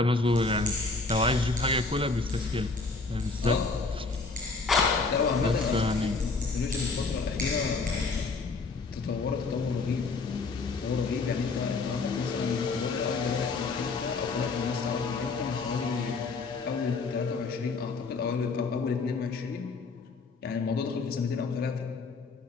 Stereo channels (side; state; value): right; quieter; 4.0 dB